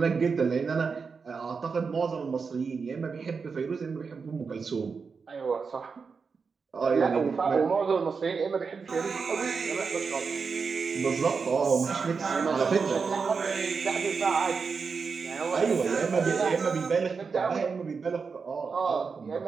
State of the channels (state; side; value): quieter; left; 5.2 dB